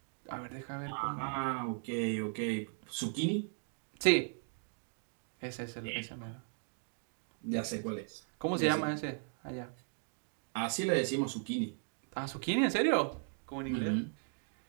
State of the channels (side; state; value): left; silent; 53 dB below the other